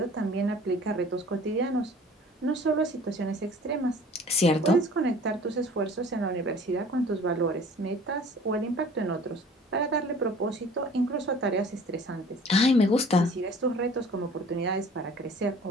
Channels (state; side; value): normal; both; correlation 0.48